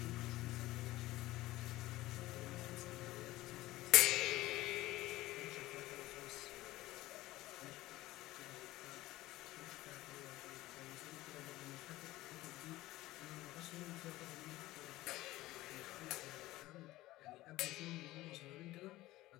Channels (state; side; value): quieter; right; 17.4 dB